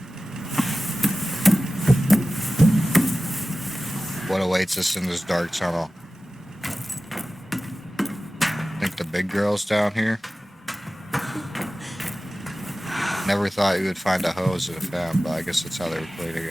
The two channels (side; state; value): both; normal; correlation 0.96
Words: What awaits us in this dark tunnel? I think the big girl's down here. Never thought you would find a hose in a fan, but I guess that's how they were cleaning